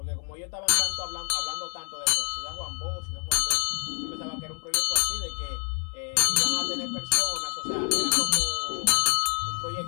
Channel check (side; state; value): right; quieter; 39.9 dB